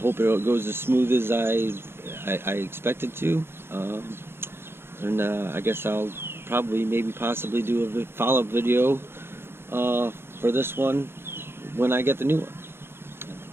it goes as smooth as I expect it to. And I guess I'll probably possibly do a follow-up video for this one when I get the new one.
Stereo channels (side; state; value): left; late; 0.11 ms